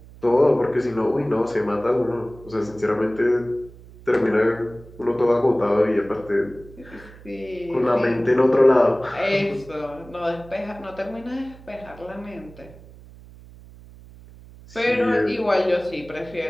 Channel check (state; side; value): noise; right; hum, 20 dB below the sound